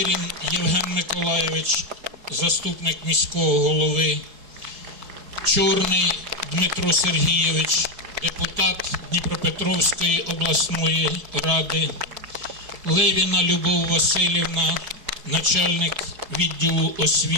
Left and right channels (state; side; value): late; left; 4.7 ms